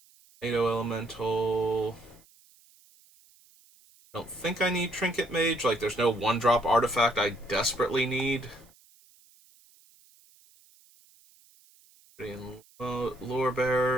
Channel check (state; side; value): noise; right; hiss, 29 dB below the sound